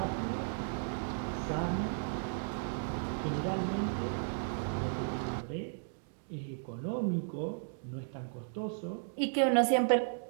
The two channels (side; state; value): left; silent; digital silence